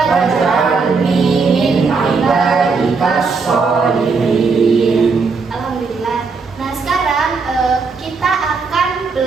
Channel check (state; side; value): quieter; left; 4.7 dB